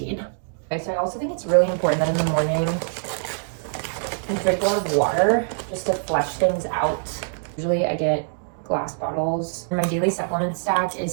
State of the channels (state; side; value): silent; left; digital silence